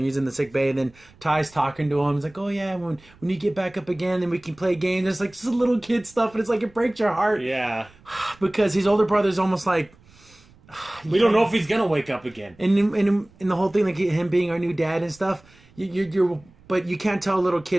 he's in the sick bay. And then Ty's talking to him. He's like, oh, yeah, when you get back up again, then we can play games. It's like just little kid stuff. And it's like it breaks your heart. Yeah. Because his older brother's almost like... We don't know if he's going to wake up again. And the whole thing, like him being our new dad and stuff, but you can't tell a little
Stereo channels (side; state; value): right; noise; rumble, 27 dB below the sound